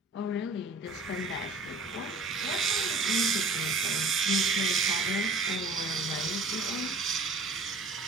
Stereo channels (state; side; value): quieter; left; 3.5 dB